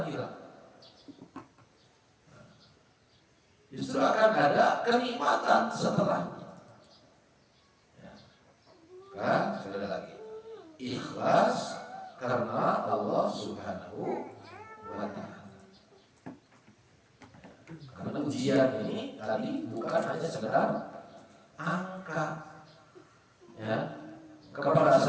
hilang. Justru akan ada kenikmatan setelahnya. Ya. Kan, sekali lagi, ikhlas karena Allah Subhanahu wa taala. Karena ujian ini tadi bukan hanya sekedar angka. Ya, kepada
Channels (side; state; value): both; identical; correlation 1.00